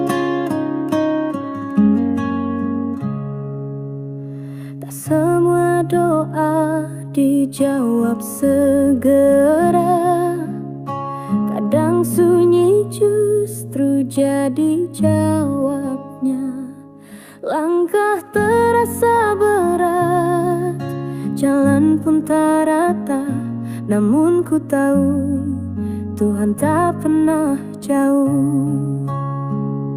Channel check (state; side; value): identical; both; correlation 1.00